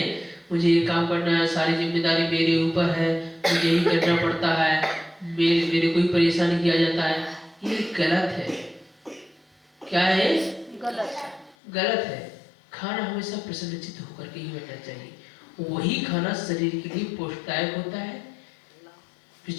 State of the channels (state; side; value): drops out; right; at 11.6 s